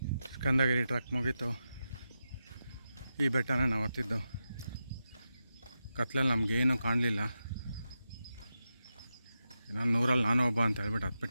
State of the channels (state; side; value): inverted; both; correlation -0.89